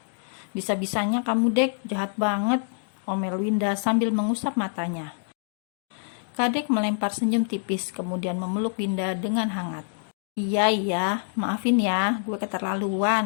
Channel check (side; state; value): right; silent; digital silence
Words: Bisa-bisanya kamu, Dek, jahat banget, omel Winda sambil mengusap matanya. Kadek melempar senyum tipis kemudian memeluk Winda dengan hangat. Iya, maafin ya, gue